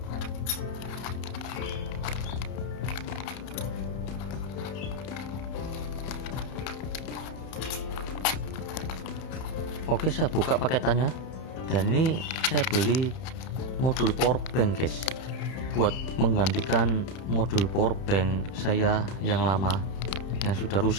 Oke, saya buka paketannya dan ini saya beli modul power bank guys, buat menggantikan modul power bank saya yang lama yang sudah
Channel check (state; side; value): late; right; 31 ms